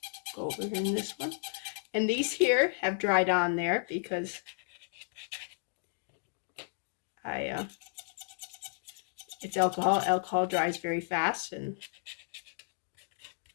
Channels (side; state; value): right; silent; digital silence